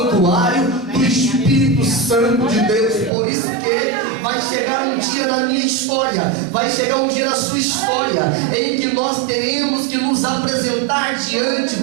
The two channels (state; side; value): drops out; left; at 3.1 s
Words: do Espírito Santo de Deus. Por isso que vai chegar um dia na minha história, vai chegar um dia na sua história, em que nós teremos que nos apresentar diante de